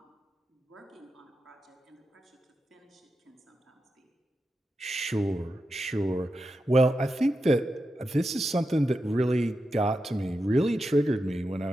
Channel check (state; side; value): normal; both; correlation 0.88